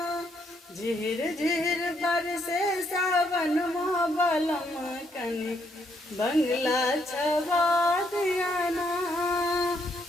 झिर झिर बरसे सावन माँ बलम कनी बंगला छेवा दियाना।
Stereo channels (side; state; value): both; normal; correlation 0.73